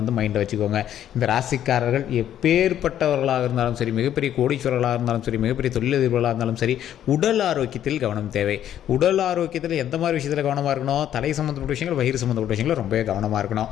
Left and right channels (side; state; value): right; quieter; 10.9 dB